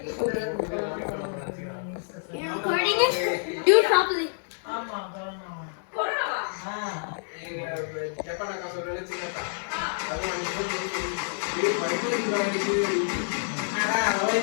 Hold it. You're recording it? Do it properly.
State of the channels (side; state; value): right; silent; digital silence